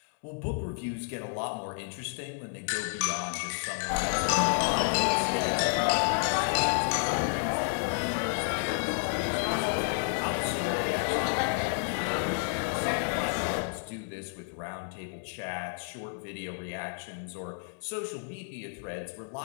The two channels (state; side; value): silent; right; digital silence